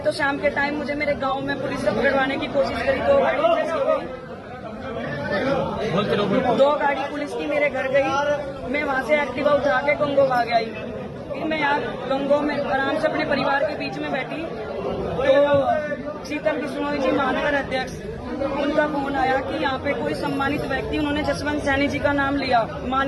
शाम के टाइम मुझे मेरे गांव में पुलिस से पकड़वाने की कोशिश करी। 2 गाड़ी पुलिस की मेरे घर गई। मैं वहां से एक्टिवा उठा के गंगो भाग आई। फिर मैं यहाँ गंगो में आराम से अपने परिवार के बीच में बैठी तो शीतल बिश्नोई जी, महानगर अध्यक्ष, उनका फोन आया कि यहाँ पे कोई सम्मानित व्यक्ति, उन्होंने जसवंत सैनी जी का नाम लिया,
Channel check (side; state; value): both; identical; correlation 1.00